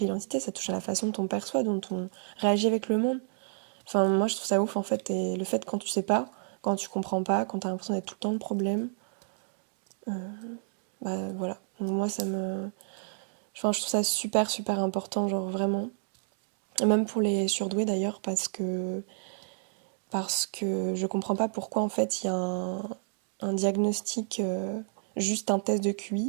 identité, ça touche à la façon dont on perçoit, dont on réagit avec le monde. Enfin, moi, je trouve ça ouf, en fait. Et le fait, quand tu sais pas, quand tu comprends pas, quand t'as l'impression d'être tout le temps le problème, euh, bah voilà. Donc, moi, enfin, je trouve ça super, super important, genre vraiment. Et même pour les surdoués, d'ailleurs, parce que je comprends pas pourquoi, en fait, il y a un diagnostic, juste un test de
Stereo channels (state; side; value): silent; left; digital silence